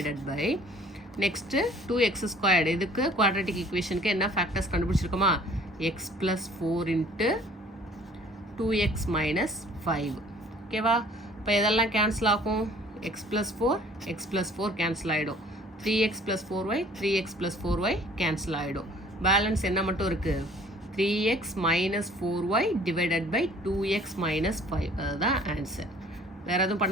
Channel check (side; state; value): both; normal; correlation 0.54